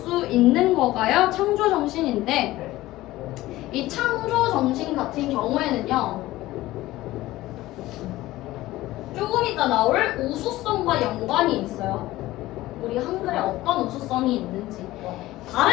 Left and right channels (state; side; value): quieter; right; 17.0 dB